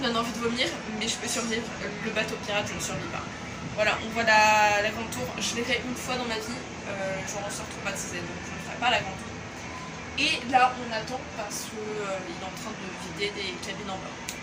donnent envie de vomir, mais je peux survivre. Le bateau pirate, je ne survis pas. Voilà, on voit la grande tour. Je l'ai fait une fois dans ma vie, j'en ressors traumatisée, donc je ne ferai pas la grande tour. Et là, on attend parce qu'il est en train de vider des cabines en bas.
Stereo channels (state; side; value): identical; both; correlation 1.00